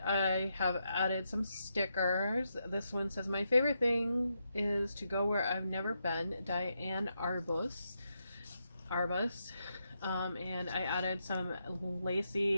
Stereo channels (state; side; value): inverted; both; correlation -0.83